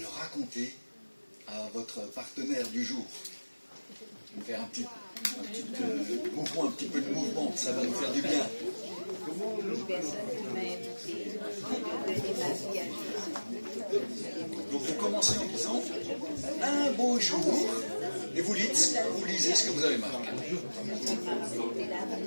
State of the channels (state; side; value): inverted; both; correlation -1.00